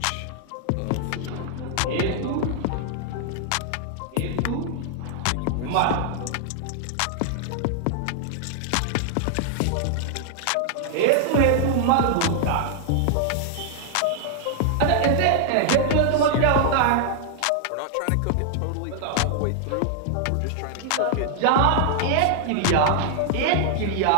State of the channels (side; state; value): both; different; correlation -0.01